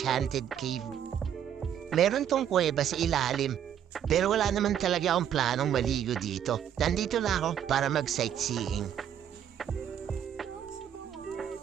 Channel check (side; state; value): left; quieter; 9.5 dB